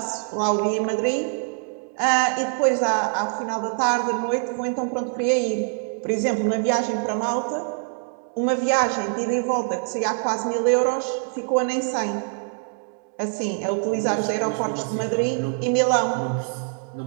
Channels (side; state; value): left; silent; 62 dB below the other